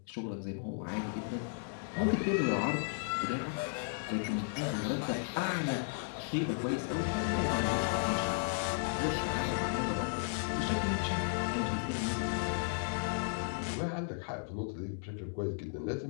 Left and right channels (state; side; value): silent; right; digital silence